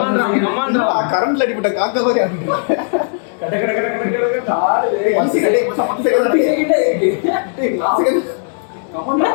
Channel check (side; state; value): right; silent; 69 dB below the other